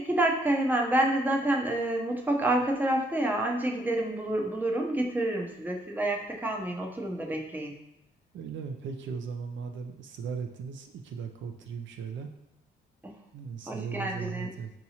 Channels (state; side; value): normal; both; correlation 0.71